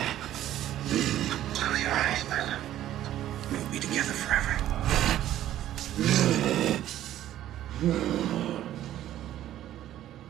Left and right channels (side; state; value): left; quieter; 12.7 dB